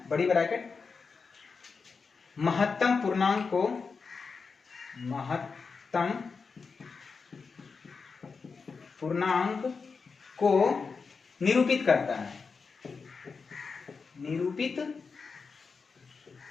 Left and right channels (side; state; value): right; quieter; 5.0 dB